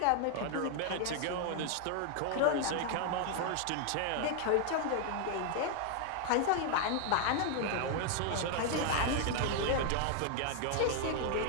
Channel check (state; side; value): different; both; correlation 0.00